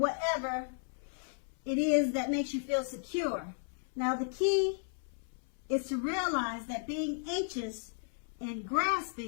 it is that makes you feel secure. Now the key is to realize that being anxious and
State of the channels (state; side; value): silent; right; 55 dB below the other